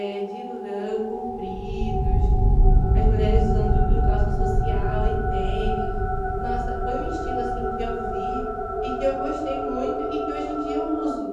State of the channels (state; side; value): identical; both; correlation 1.00